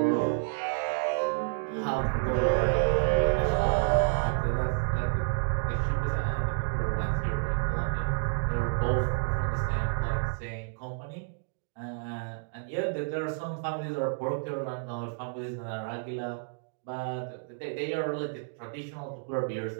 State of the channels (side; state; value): left; silent; digital silence